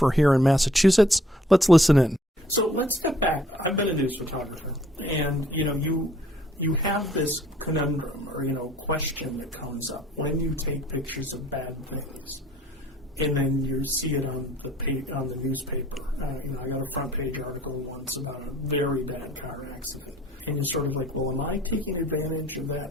here in Massachusetts. Let's listen in. So let's step back. I've been a news photographer, and you have this conundrum or question that comes up when you take pictures of bad things, and then you see it on the newspaper. I got a front page article once about a very bad car accident, and you're sort of like, well, am I taking advantage of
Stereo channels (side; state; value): both; normal; correlation 0.59